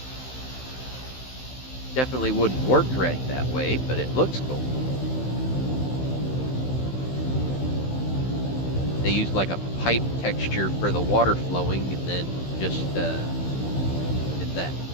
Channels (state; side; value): late; right; 15 ms